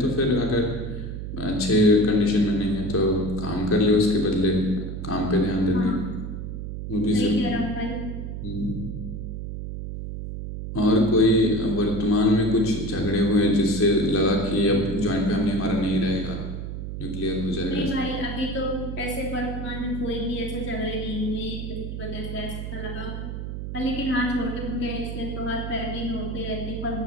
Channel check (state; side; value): noise; right; hum, 6 dB below the sound